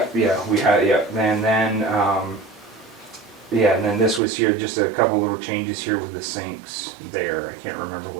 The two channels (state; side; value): drops out; left; at 4.2 s